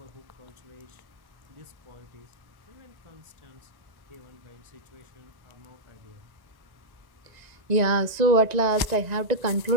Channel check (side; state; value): left; late; 1.9 ms